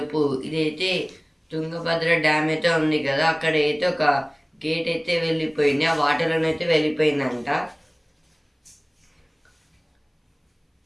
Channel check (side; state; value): both; identical; correlation 1.00